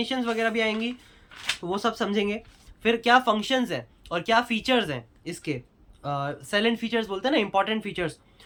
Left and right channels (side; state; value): both; identical; correlation 1.00